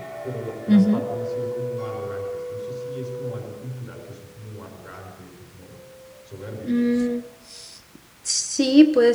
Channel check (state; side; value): identical; both; correlation 1.00